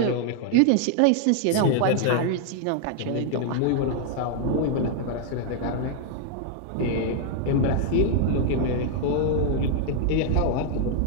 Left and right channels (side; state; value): both; different; correlation 0.00